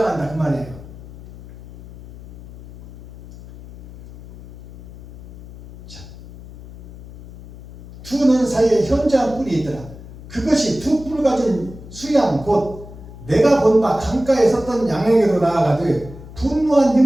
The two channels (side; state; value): left; noise; hum, 16 dB below the sound